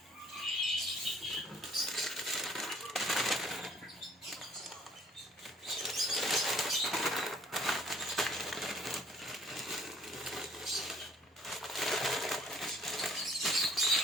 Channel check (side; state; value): both; normal; correlation 0.57